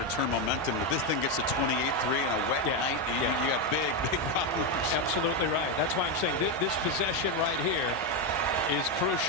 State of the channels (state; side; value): normal; both; correlation 0.07